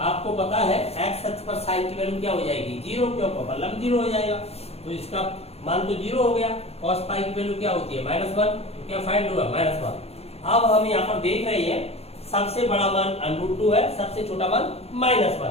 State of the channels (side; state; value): right; late; 0.30 ms